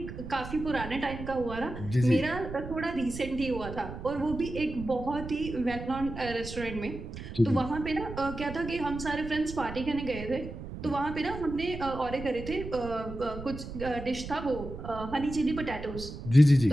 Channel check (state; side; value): noise; right; rumble, 10 dB below the sound